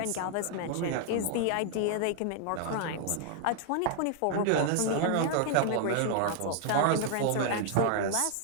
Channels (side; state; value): both; different; correlation 0.00